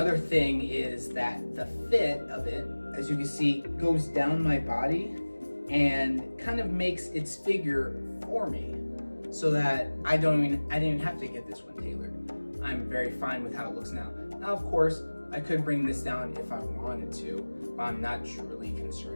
thing is that the fit of it, as you can see, goes down my body and kind of makes its figure for me, so that I didn't even have to get this one tailored. I'm very fine with how it looks now. Now, of course, I could bring this down if I wanted to, but I'm not truly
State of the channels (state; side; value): inverted; both; correlation -1.00